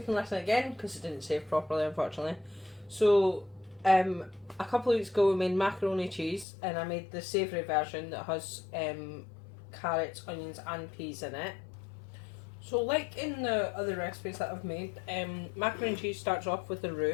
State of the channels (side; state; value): right; drops out; at 6.5 s